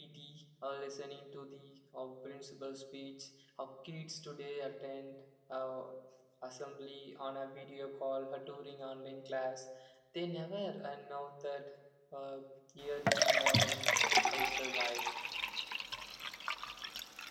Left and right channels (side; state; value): both; identical; correlation 1.00